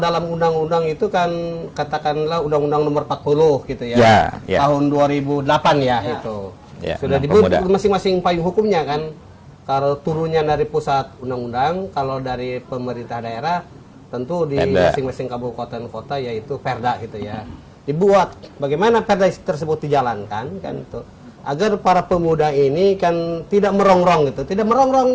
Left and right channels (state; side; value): identical; both; correlation 1.00